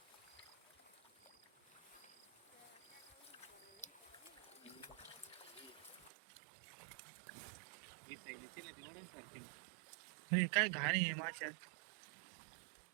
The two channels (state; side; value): drops out; left; at 6.1 s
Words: हे काय घाण आहे माशा